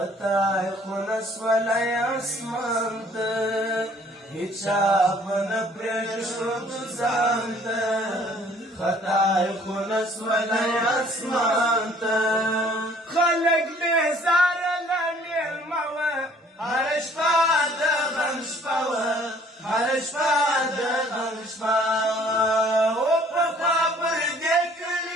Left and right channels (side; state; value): both; normal; correlation 0.57